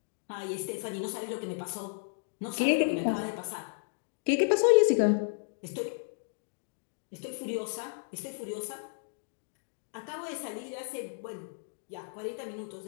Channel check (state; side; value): silent; right; digital silence